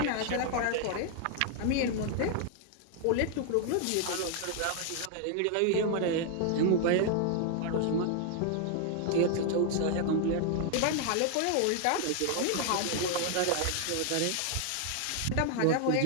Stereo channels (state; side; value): different; both; correlation 0.00